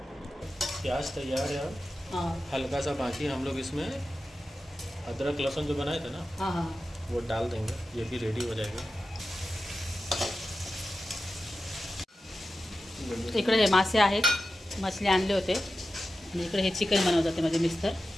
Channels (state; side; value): normal; both; correlation 0.92